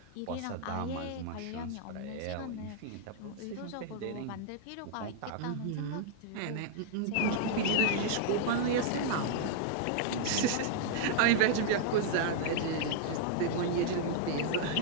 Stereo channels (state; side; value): different; both; correlation -0.01